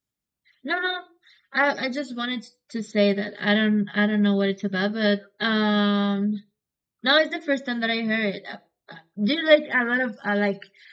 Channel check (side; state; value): both; identical; correlation 1.00